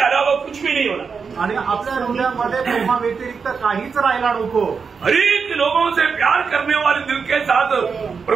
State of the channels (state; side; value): quieter; left; 5.6 dB